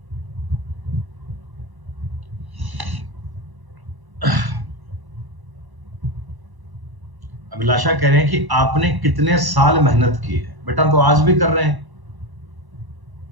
अभिलाषा कह रहे हैं कि आपने कितने साल मेहनत की है। बेटा तो आज भी कर रहे हैं,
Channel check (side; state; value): left; late; 1.0 ms